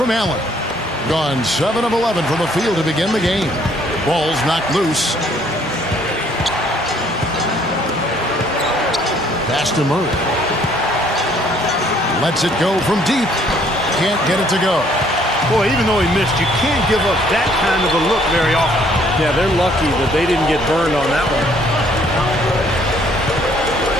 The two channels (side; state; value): both; normal; correlation 0.63